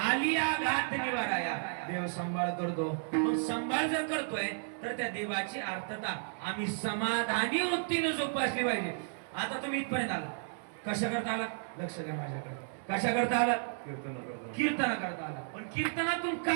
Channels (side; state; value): left; silent; digital silence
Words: घात निवाराया देव सांभाळ करतो मग सांभाळ जर करतोय तर त्या देवाची अर्थता आम्ही समाधानी वृत्तीने जोपासली पाहिजे आता तुम्ही इथपर्यंत आला कशा करता आला लक्ष द्या माझ्याकडे कशा करता आला कीर्तन करता आला पण कीर्तनातून